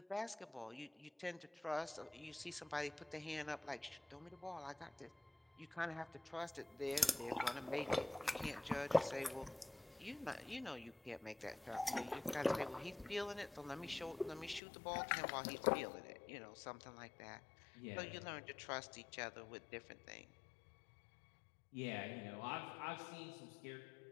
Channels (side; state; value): right; drops out; at 14.6 s